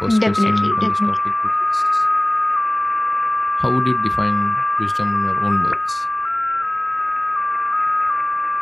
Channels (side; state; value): right; noise; rumble, 30 dB below the sound